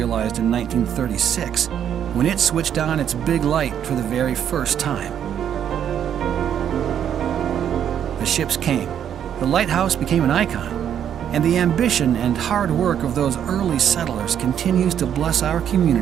in 1936, when it switched on its big light for the very first time. The ships came, the lighthouse became an icon, and the ambition and hard work of those early settlers continues to bless our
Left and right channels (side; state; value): left; quieter; 9.3 dB